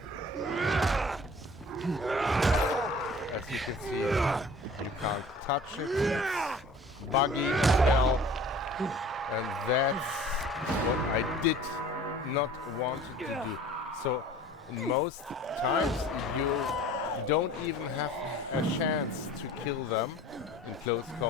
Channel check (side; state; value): both; normal; correlation 0.46